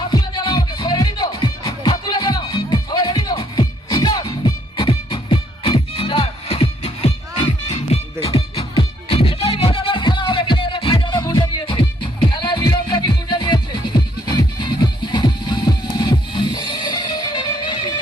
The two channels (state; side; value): normal; both; correlation 0.70